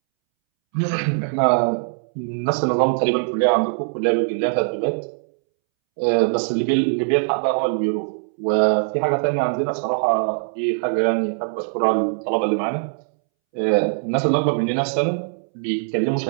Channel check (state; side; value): silent; left; 64 dB below the other